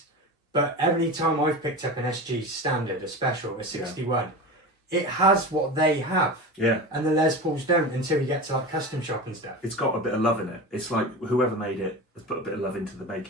but every time I've picked up an SG standard, a special, a 61, it has what they have. Yeah. And the Les Pauls don't until you get to like custom shop and stuff. It's got a bit of love in it. It's like whoever made it has put a bit of love into the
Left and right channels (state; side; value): normal; both; correlation 0.28